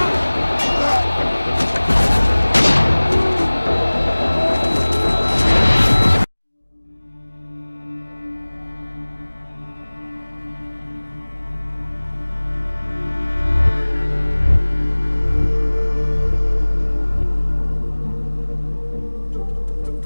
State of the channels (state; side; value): inverted; both; correlation -1.00